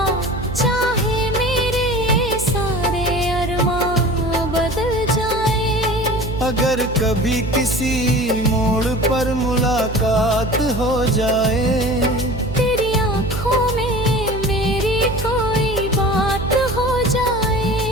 चाहे मेरे सारे अरमां बदल जाए। अगर कभी किसी मोड़ पर मुलाकात हो जाए, तेरी आंखों में मेरी कोई बात हो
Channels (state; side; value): noise; right; hum, 7 dB below the sound